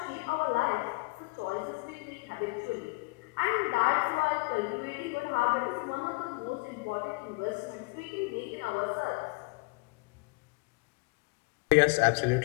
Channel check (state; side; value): quieter; right; 27.8 dB